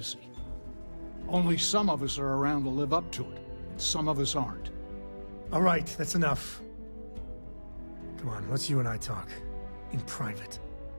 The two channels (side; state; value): both; inverted; correlation -1.00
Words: Only some of us are around to live up to it, and some of us aren't. All right, that's enough. Come on, let's you and I talk. In private.